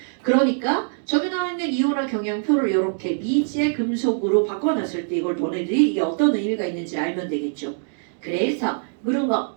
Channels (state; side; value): silent; left; digital silence